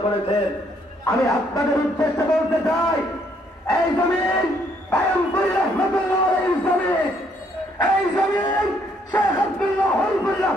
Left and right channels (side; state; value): both; normal; correlation 0.69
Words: করেছেন, আমি আপনাদের উদ্দেশ্যে বলতে চাই, এই জমিন পায়মপুর রহমতুল্লাহ আলাইহির জমিন, এই জমিন শেখ আব্দুল্লাহ হলফুর